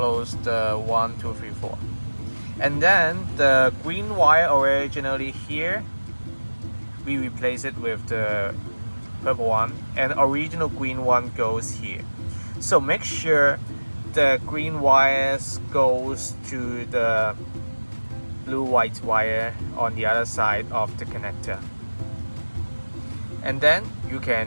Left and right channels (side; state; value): both; inverted; correlation -1.00